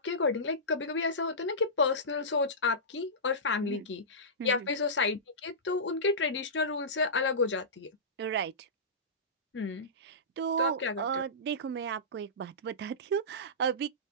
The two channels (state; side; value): normal; both; correlation -0.19